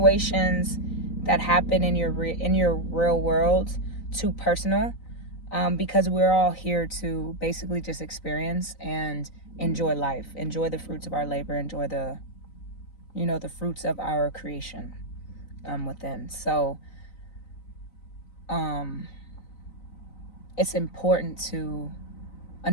that happen in your real world too personal, because we're all here to basically just experience and enjoy life, enjoy the fruits of our labor, enjoy the, you know, the fruits of our creation within. So it's important to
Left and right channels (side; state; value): right; late; 3.9 ms